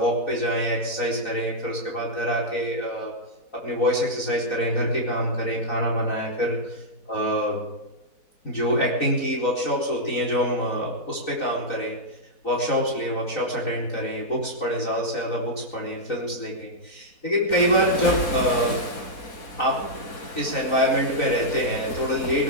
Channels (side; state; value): right; late; 4.1 ms